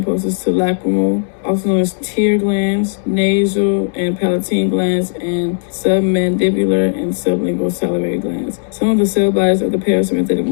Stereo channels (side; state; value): right; silent; digital silence